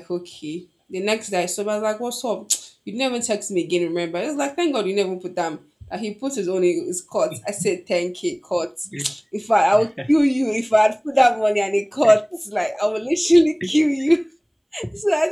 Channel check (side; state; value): both; identical; correlation 1.00